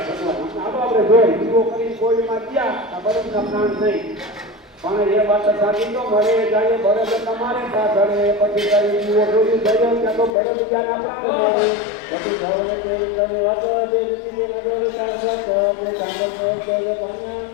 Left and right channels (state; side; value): drops out; right; at 10.4 s